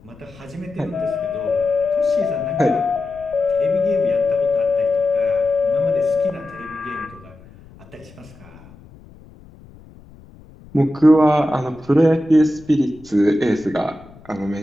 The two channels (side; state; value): left; noise; rumble, 23 dB below the sound